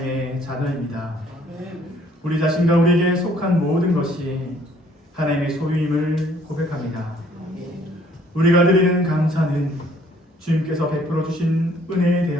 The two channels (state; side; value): normal; both; correlation 0.61